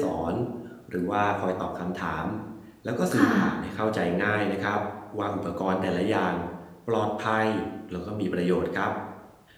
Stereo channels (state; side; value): identical; both; correlation 1.00